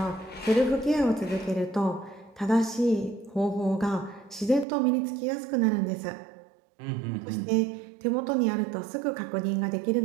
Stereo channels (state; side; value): drops out; left; at 4.7 s